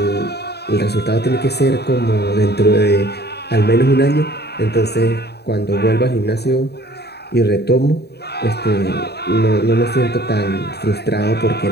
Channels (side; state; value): right; late; 0.48 ms